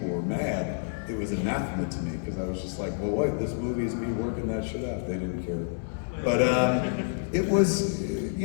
were mad, it was anathema to me, because I was just like, well, wait, this movie is me working that shit out. They didn't care. But it was,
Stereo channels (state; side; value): silent; right; 59 dB below the other